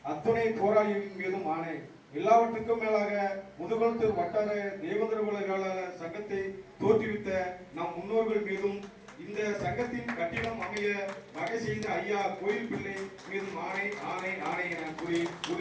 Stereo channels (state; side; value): identical; both; correlation 1.00